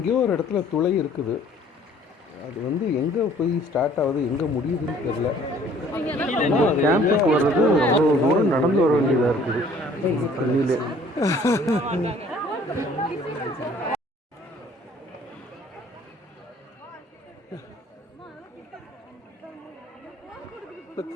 ஒரு இடத்துல துளை இருக்குது. அது வந்து எங்கே போய் ஸ்டார்ட் ஆகுது எங்கே முடியுதுன்னு தெரில. கேம்புக்கு வர்றது அவ்வளோ தூரம் நடந்து வர வேண்டியதாக இருக்குது தண்ணியிலே.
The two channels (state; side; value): normal; both; correlation 0.56